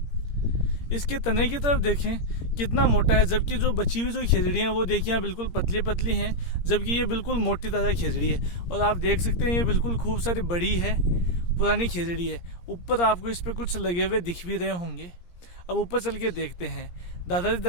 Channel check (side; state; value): right; late; 17 ms